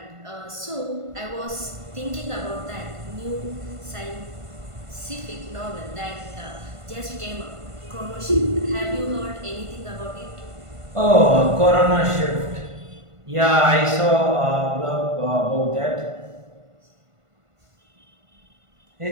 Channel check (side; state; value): left; late; 1.5 ms